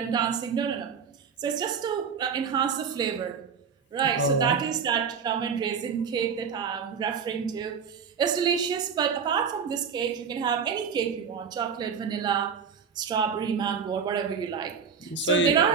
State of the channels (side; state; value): left; quieter; 6.5 dB